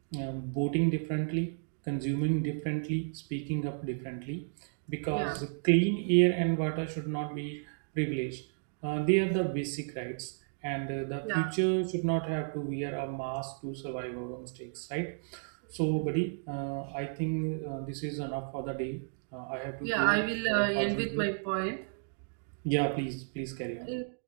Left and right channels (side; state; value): left; silent; digital silence